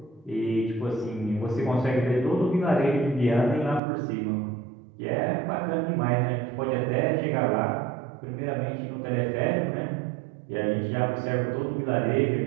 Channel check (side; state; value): left; drops out; at 3.8 s